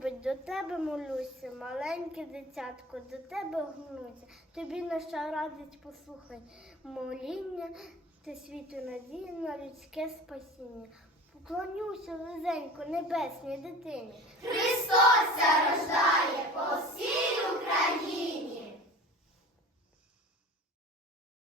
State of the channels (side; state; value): both; normal; correlation 0.38